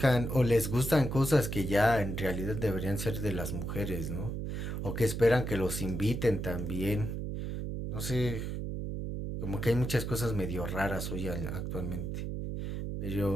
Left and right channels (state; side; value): noise; right; hum, 4 dB below the sound